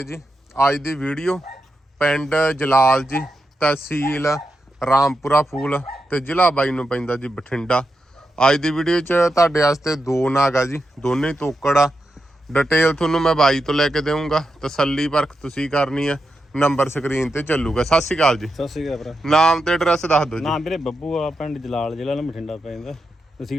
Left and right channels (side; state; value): both; normal; correlation 0.87